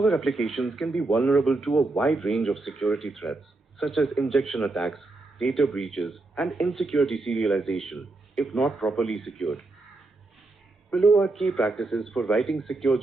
applications can be vulnerable to a wide range of security threats, such as injection attacks, data breaches, and insecure deserialization, if not properly secured. Below are key practices for writing secure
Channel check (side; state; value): left; quieter; 3.2 dB